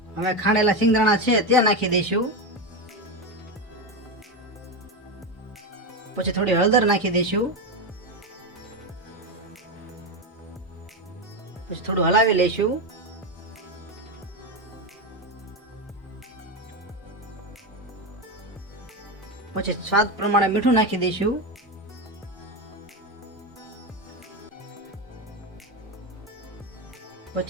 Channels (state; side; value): normal; both; correlation 0.13